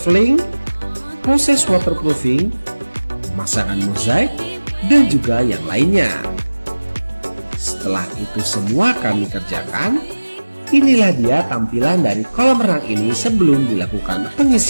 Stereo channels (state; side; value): inverted; both; correlation -1.00